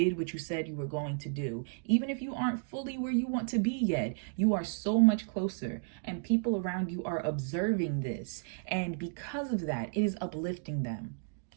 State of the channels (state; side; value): silent; left; digital silence